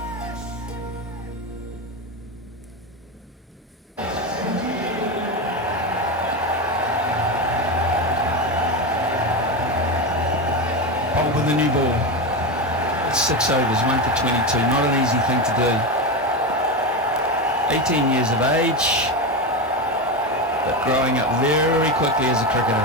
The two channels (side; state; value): both; normal; correlation 0.16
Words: With the new ball. 6 overs, 1 for 22. Not an easy thing to do. 18 years of age, but growing up very quickly as a